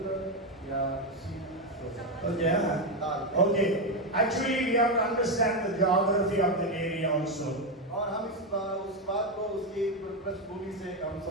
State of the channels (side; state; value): both; normal; correlation 0.08